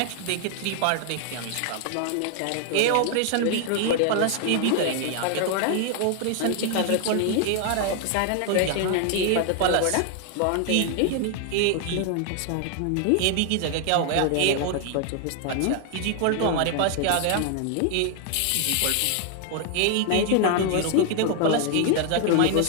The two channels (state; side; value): different; both; correlation 0.00